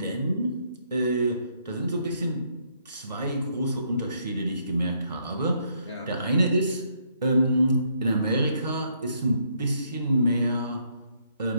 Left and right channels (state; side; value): inverted; both; correlation -0.72